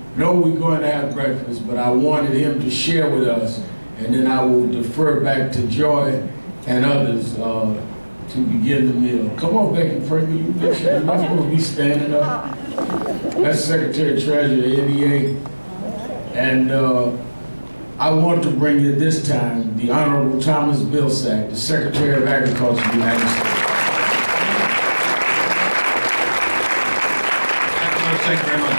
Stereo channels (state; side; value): inverted; both; correlation -1.00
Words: know we're going to have breakfast, but I wanted him to share with us, and then I will defer back to Joy and others to begin the meal. Come on, Becky Franklin, you're not supposed to be standing up. That's Secretary Treasurer, NEA. And I want to bring you this time the Honorable Thomas Vilsack, the Secretary of Agriculture of the United States. Thank you very much.